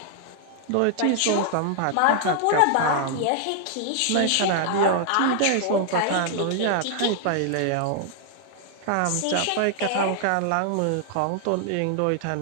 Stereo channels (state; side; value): different; both; correlation 0.00